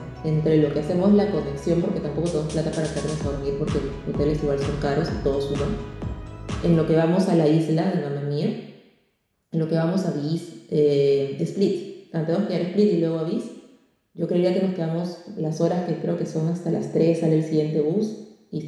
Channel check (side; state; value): both; identical; correlation 1.00